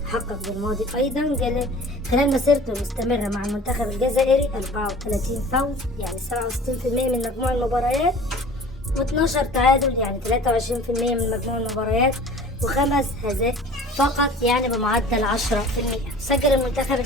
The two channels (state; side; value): normal; both; correlation 0.44